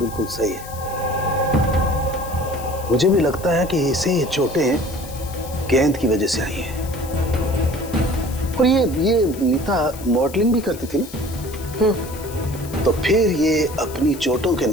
सही है। मुझे भी लगता है कि इसे ये चोटें गेंद की वजह से आई हैं। और ये नीता मॉडलिंग भी करती थी ना, तो फिर ये अपनी चोटों के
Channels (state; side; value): noise; left; hiss, 16 dB below the sound